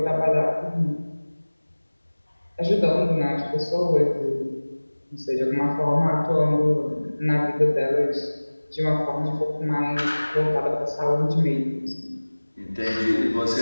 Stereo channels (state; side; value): inverted; both; correlation -1.00